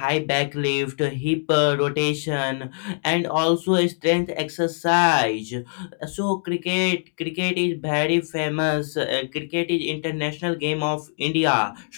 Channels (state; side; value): silent; right; digital silence